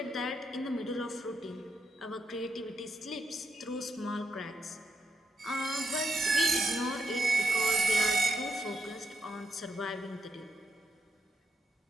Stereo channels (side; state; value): both; normal; correlation 0.80